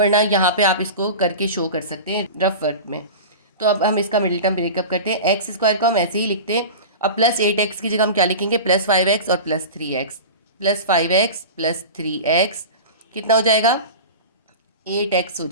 यहाँ पे आप इसको करके शो कर सकते हैं रफ वर्क में। तो अब हम इसका मिडिल टर्म ब्रेकअप करते हैं। एक्स स्क्वायर को हम ऐसे ही लिखते हैं। अब प्लस 8x की जगह हम क्या लिखेंगे, प्लस 5x और plus 3x। Plus 5x plus 3x कितना हो जाएगा, 8x हो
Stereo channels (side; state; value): both; inverted; correlation -0.31